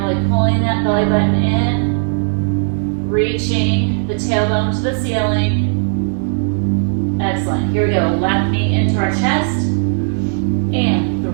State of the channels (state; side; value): silent; left; digital silence